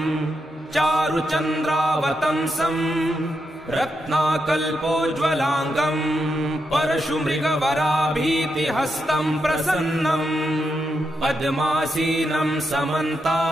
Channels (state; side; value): normal; both; correlation 0.84